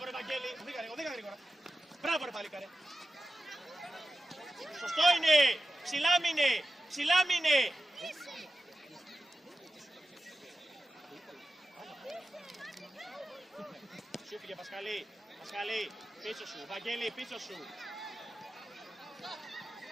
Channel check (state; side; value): normal; both; correlation 0.92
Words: ρε Βαγγέλη! Οδήγα γρήγορα! Μπράβο ρε παλίκαρε! Σωστό είναι! Ψηλά μείνε! Ψηλά μείνε! Σου πήγε Πασχαλή! Πασχαλή! Πίσω σου! Βαγγέλη πίσω σου!